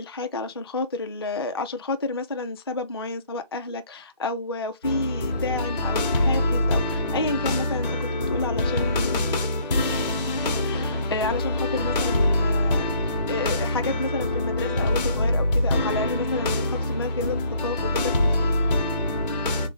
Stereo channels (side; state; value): both; inverted; correlation -0.59